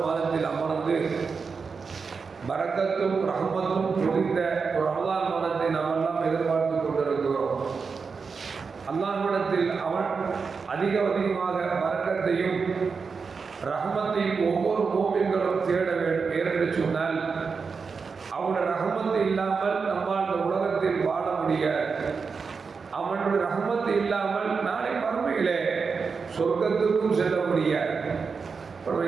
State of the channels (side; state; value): left; quieter; 5.2 dB